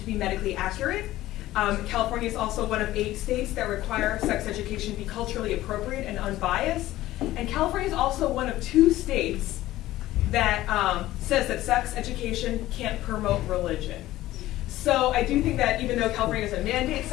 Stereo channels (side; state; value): right; quieter; 15.7 dB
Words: be medically accurate. California is also one of 8 states that require sex education to be culturally appropriate and unbiased. And California is also one of 2 states that says that sex education can't promote religion. So I do think that even though California doesn't mandate